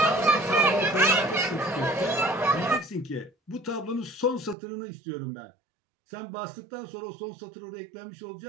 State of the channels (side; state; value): left; drops out; at 4.5 s